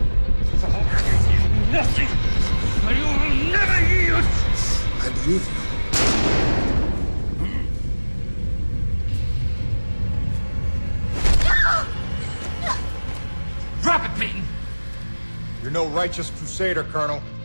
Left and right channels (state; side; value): inverted; both; correlation -1.00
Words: Nothing! I will never yield! I believe you. Drop it, Peyton! You're no righteous crusader, Colonel.